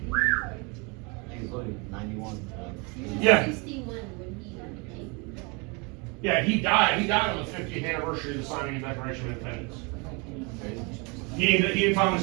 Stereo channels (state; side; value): quieter; left; 29.8 dB